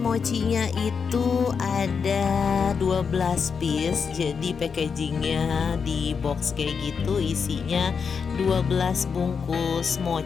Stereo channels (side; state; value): right; quieter; 6.0 dB